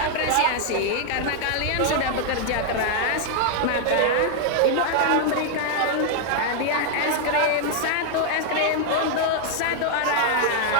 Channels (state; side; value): different; both; correlation 0.00